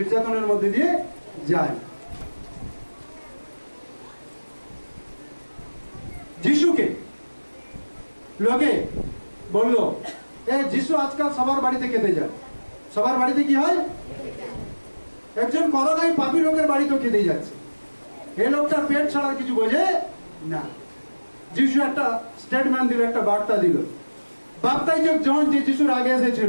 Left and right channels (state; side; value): inverted; both; correlation -1.00